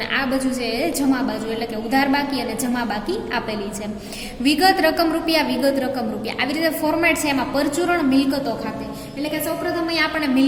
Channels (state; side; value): identical; both; correlation 1.00